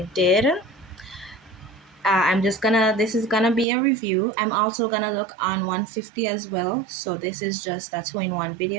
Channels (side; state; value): left; drops out; at 3.7 s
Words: did. This is gonna be a review. I'm also gonna look on 150 as well. So this is just a two-in-one